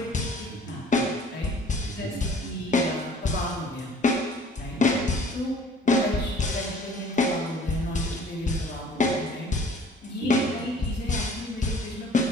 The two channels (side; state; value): both; normal; correlation 0.52